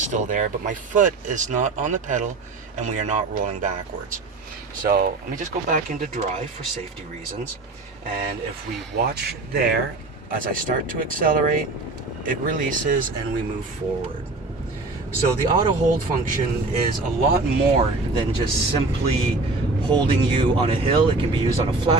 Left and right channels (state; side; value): quieter; left; 3.4 dB